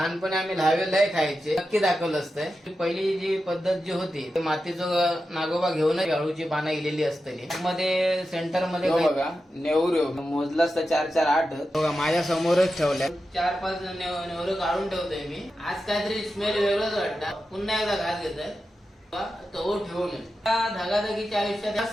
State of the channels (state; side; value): normal; both; correlation 0.91